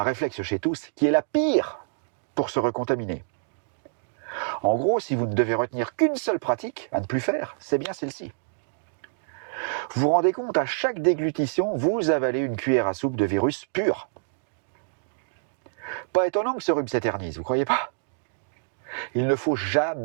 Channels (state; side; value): silent; left; digital silence